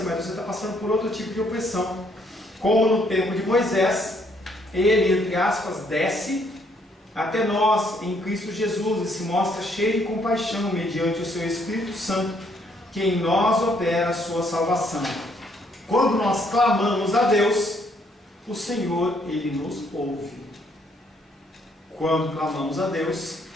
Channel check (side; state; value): both; normal; correlation 0.69